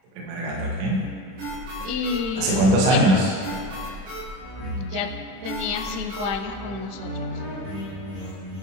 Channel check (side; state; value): left; late; 32 ms